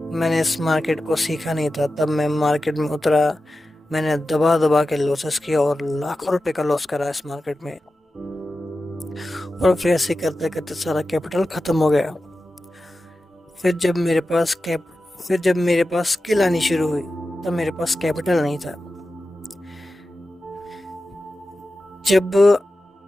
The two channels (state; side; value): normal; both; correlation 0.93